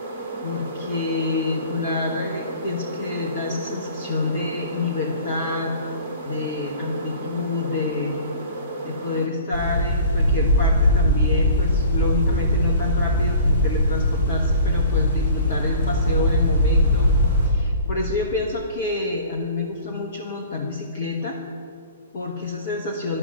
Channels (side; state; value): both; inverted; correlation -0.45